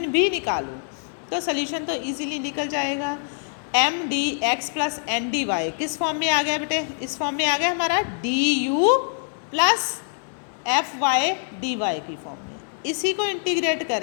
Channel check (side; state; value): right; silent; 62 dB below the other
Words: भी निकालो, तो सल्यूशन तो इजीली निकल जाएगा। M D x plus N D y किस फॉर्म में आ गया बेटे, इस फॉर्म में आ गया हमारा d u plus f y d y की फॉर्म में। इसी को इंटीग्रेट